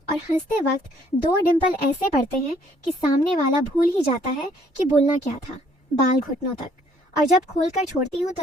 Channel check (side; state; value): both; normal; correlation 0.63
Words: और हंसते वक्त 2 डिंपल ऐसे पड़ते हैं कि सामने वाला भूल ही जाता है कि बोलना क्या था। बाल घुटनों तक, और जब खोलकर छोड़ती हूँ तो